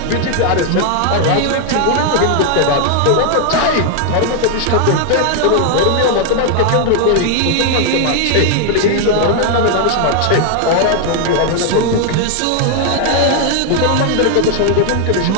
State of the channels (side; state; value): both; different; correlation 0.00